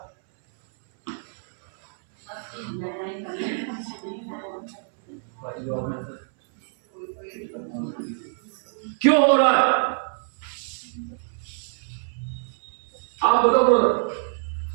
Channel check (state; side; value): silent; left; 61 dB below the other